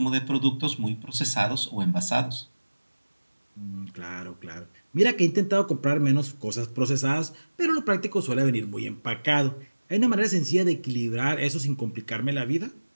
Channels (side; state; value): both; inverted; correlation -1.00